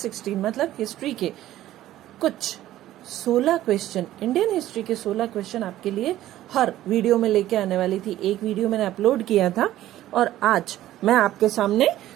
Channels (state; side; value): quieter; left; 14.0 dB